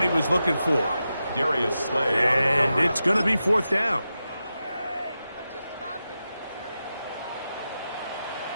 he was looking for. Darius Slay. And it's going to be 4th down.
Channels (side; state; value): both; inverted; correlation -0.90